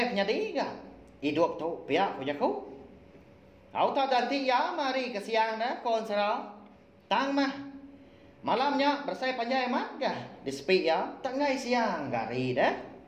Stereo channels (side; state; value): both; identical; correlation 1.00